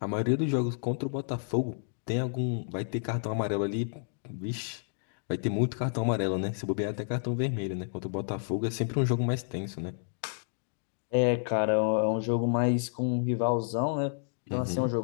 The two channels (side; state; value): right; silent; digital silence